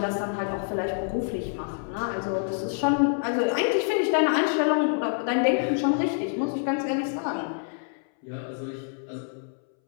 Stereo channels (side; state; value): right; silent; 60 dB below the other